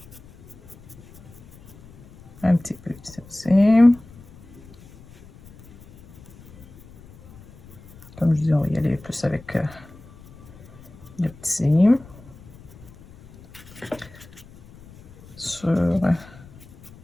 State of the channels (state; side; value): noise; left; rumble, 22 dB below the sound